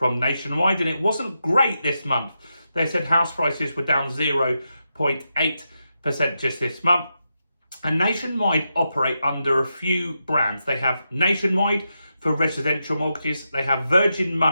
Nationwide, and it wasn't great this month. They said house prices were down 0.8% just this month. And Nationwide operate under a few brands. They have Nationwide for residential mortgages. They have Virgin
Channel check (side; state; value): both; inverted; correlation -0.87